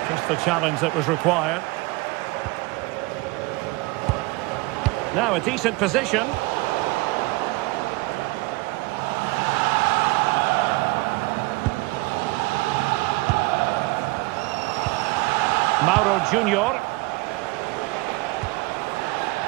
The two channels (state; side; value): quieter; left; 23.5 dB